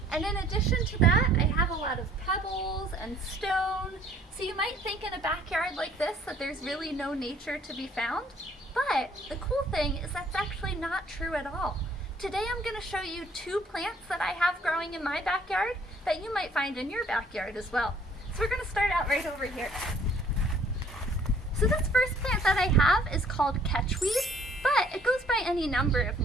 And in addition to that, I have a lot of pebbles and stone. So you might think in a backyard like this that there's really no nature to be found. But the cool thing is that's actually not true at all. Today I'm going to show you two plants that I have growing in my backyard that you might find in your backyard as well. So we're going to start out right over here. So this first plant that I have is called catchweed, but it goes by any number of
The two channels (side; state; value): both; normal; correlation 0.58